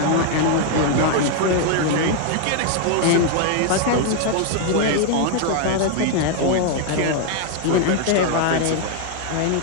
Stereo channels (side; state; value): both; different; correlation 0.00